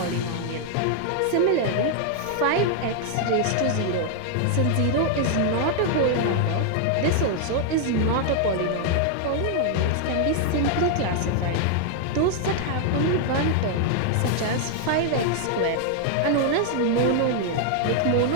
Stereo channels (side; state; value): both; different; correlation 0.00